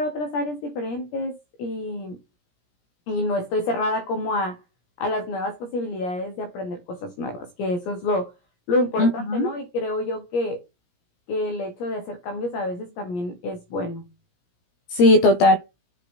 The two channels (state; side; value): late; right; 17 ms